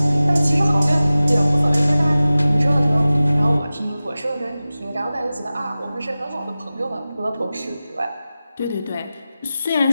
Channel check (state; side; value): inverted; both; correlation -0.96